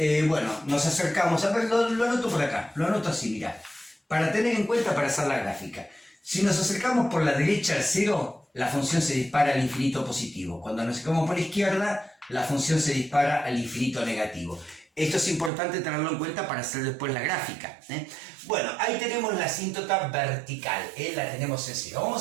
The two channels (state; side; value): drops out; left; at 15.5 s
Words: nos acercamos, a ver, lo anoto por acá, lo anoto así, mirá, para tener en cuenta para hacer la gráfica. Si nos acercamos por la derecha al 0, la función se dispara al infinito positivo. Cuando nos acercamos por la izquierda, la función se dispara al infinito negativo. Esto es importante tenerlo en cuenta para hacer después la gráfica. Bueno, ahí tenemos la asíntota vertical, la tenemos en 0.